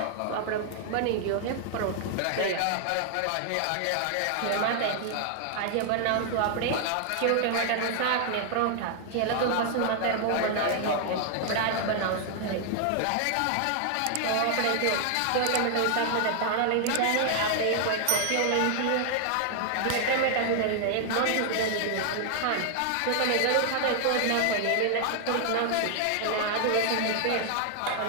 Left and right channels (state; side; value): different; both; correlation 0.00